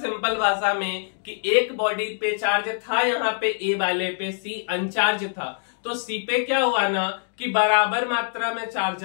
भाषा में कि एक body पे charge था, यहाँ पे ए वाले पे सी अनचार्ज था, तो सी पे क्या हुआ ना कि बराबर मात्रा में चार्ज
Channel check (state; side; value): silent; right; digital silence